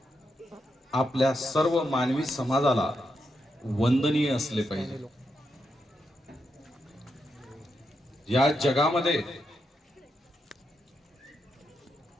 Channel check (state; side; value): normal; both; correlation 0.84